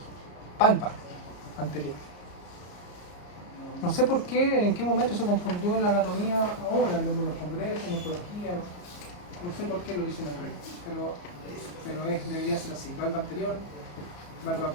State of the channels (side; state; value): right; late; 34 ms